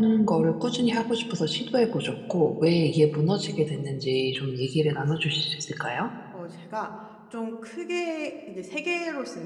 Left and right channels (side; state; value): both; identical; correlation 1.00